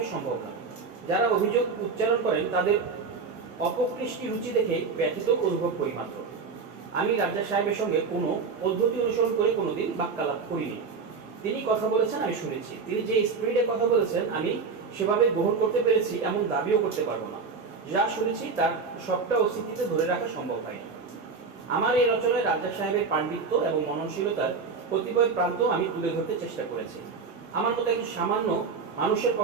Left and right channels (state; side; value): quieter; left; 4.9 dB